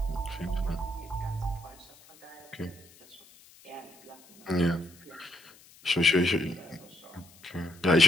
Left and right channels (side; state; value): left; noise; hiss, 24 dB below the sound